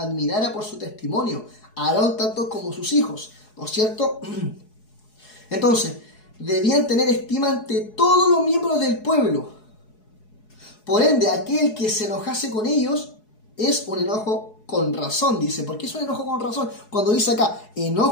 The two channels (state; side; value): late; right; 4.7 ms